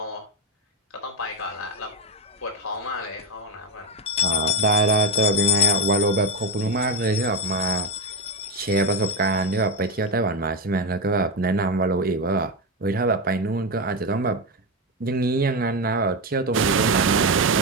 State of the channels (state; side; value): normal; both; correlation 0.10